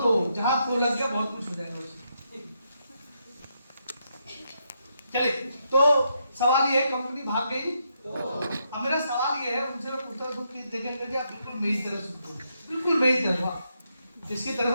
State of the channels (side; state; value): both; inverted; correlation -0.80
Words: जहां तो लग गया बहुत कुछ हो जाएगा उसमें। चलिए, तो सवाल ये है, कंपनी भाग गई तो अब मेरा सवाल ये है उनसे, मैं पूछता हूँ कि देखेंगे कि आप बिल्कुल मेरी तरह सुनते हो, बिल्कुल मेरी तरह। किसकी तरह